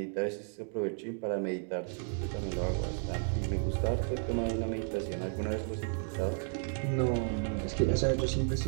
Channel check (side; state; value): left; silent; 56 dB below the other